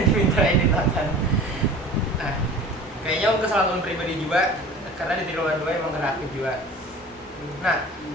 diminta editatan. Nah kayaknya kesalahan pribadi juga karena di triwulan 2 emang kreatif juga. Nah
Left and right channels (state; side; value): normal; both; correlation 0.41